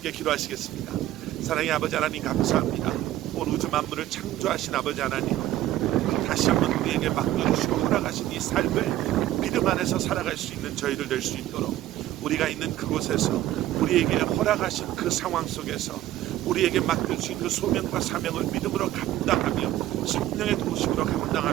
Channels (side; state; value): left; quieter; 14.0 dB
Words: 기도하시겠습니다. 사랑의 아버지 하나님, 감사합니다. 온 우주 만물을 창조하신 아버지 하나님, 다시 한번 우리에게 맡겨주시고 허락하신 이 삶을 믿음 안에서 살아갈 수 있는 저희들 될 수 있도록 우리가 있는 그곳에서 우리에게 허락하신 그 상황 속에서 우리에게 맡겨주신 그 소명과 사명을 믿음으로 감당하며 성령의 도우심으로